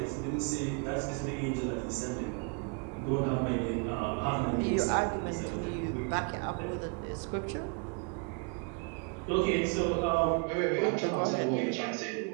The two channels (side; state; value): left; quieter; 33.9 dB